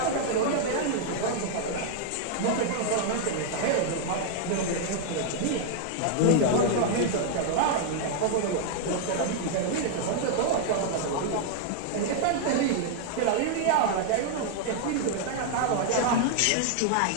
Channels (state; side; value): different; both; correlation 0.00